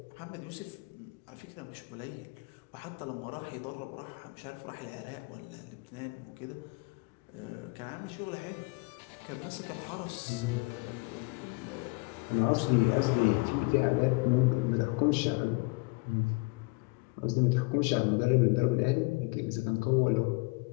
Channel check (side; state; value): right; quieter; 28.5 dB